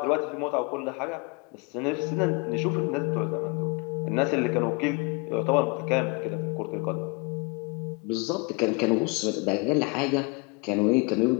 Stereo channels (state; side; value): quieter; right; 31.0 dB